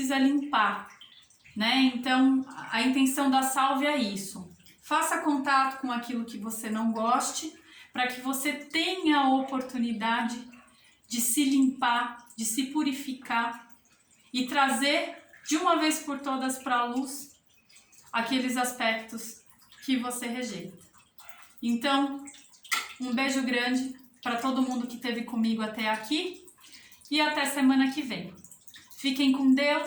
limpar, né? Então a intenção da sálvia é isso: Faça contato com aquilo que você não goste, para que você tenha a oportunidade de se limpar, de se purificar e trazer de uma vez por todas para a luz aqueles aspectos que você rejeita. Então, um beijo grande para todo mundo que esteve comigo até aqui e até semana que vem. Fiquem com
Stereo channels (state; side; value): identical; both; correlation 1.00